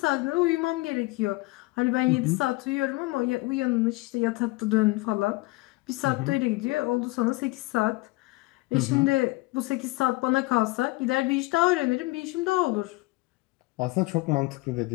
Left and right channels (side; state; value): right; quieter; 22.9 dB